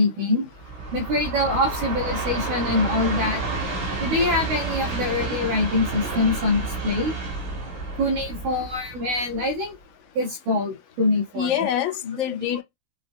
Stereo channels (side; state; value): left; late; 16 ms